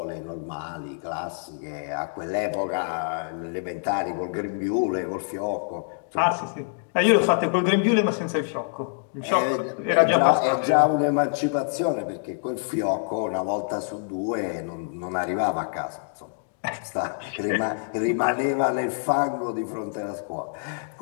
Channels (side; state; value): right; silent; digital silence